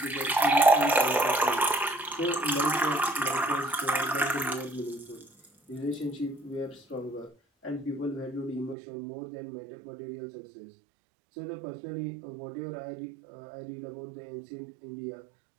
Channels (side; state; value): left; drops out; at 8.8 s